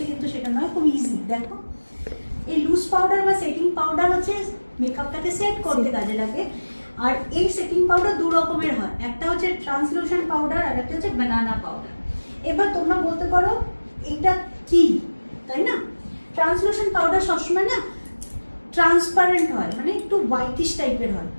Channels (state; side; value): inverted; both; correlation -1.00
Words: কিন্তু সেটা নয়, খুব ইজি। দেখো, এই লুজ পাউডার বা সেটিং পাউডার হচ্ছে মেকআপটাকে সেট করতে কাজে লাগে। আর এই সেটিং পাউডার দু রকমের হয়, একটা হচ্ছে ট্রান্সলুশন পাউডার আর একটা হচ্ছে বানানা পাউডার। এবার তোমরা বলতে পারো এটা কি, তাই না? ট্রান্সলুশন পাউডার সবসময় না ট্রান্সপারেন্ট হয়, মানে একটু হোয়াইটিশ টাইপের হয়,